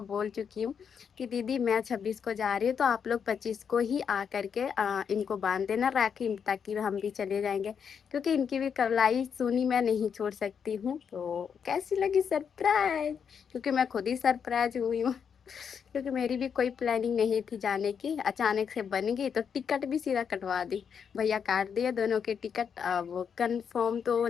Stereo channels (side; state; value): right; quieter; 7.1 dB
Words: बोल चुकी हूँ कि दीदी मैं 26 को जा रही हूँ, तो आप लोग 25 को ही आ करके इनको बांध देना राखी, ताकि हम भी चले जाएंगे, क्योंकि इनकी भी कलाई सुनी मैं नहीं छोड़ सकती हूँ। तो कैसी लगी सरप्राइज, क्योंकि मैं खुद ही सरप्राइज हुई हूँ। क्योंकि मेरी भी कोई प्लानिंग नहीं थी जाने की, अचानक से बन गई, तो टिकट भी सीधा कटवा दी। भैया काट दिए दोनों के टिकट। वो कंफर्म तो